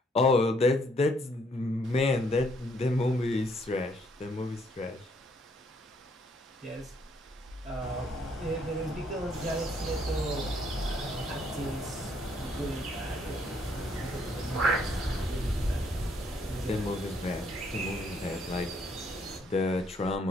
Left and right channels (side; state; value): both; normal; correlation 0.68